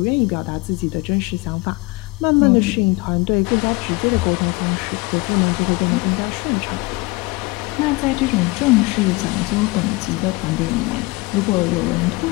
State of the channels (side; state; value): right; quieter; 24.0 dB